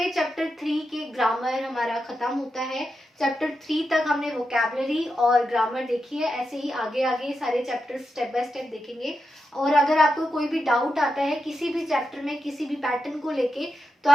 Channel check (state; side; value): normal; both; correlation 0.87